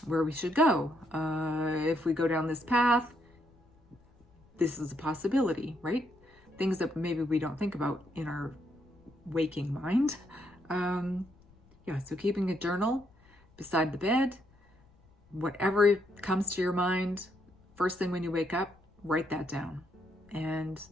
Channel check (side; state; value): left; noise; rumble, 29 dB below the sound